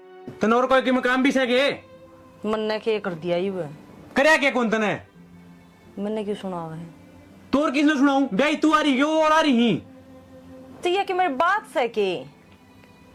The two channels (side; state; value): both; identical; correlation 1.00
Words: तनोर कोई के मकाम भी सके मन ने के कर दिया ही वो, करया के कौन तने मैंने क्यों सुना हुआ है? तोर किसने सुनाऊं ब्याई तू आ रही क्यों और आ रही तो ये कि मेरी बात से के